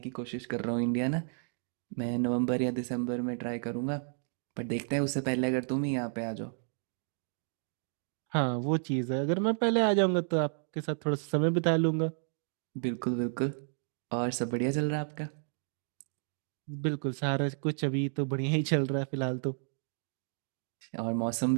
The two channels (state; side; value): silent; left; 56 dB below the other